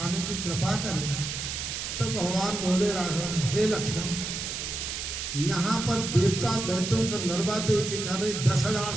की कृपा करें। तो भगवान बोले राघव, हे लक्ष्मण, यहाँ पर देवता दैत्यों का नरवा दे के करे 10,000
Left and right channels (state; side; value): noise; right; hiss, 5 dB below the sound